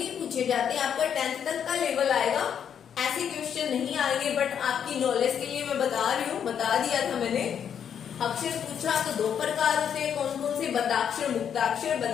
पूछे जाते। आपका 10th तक का लेवल आएगा, ऐसे क्वेश्चन नहीं आएंगे, बट आपकी नॉलेज के लिए मैं बता रही हूँ, बता दिया था मैंने। अक्षर पूछा तो 2 प्रकार होते हैं, कौन कौन से, बद्धाक्षर, मुक्ताक्षर।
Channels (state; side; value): quieter; right; 8.3 dB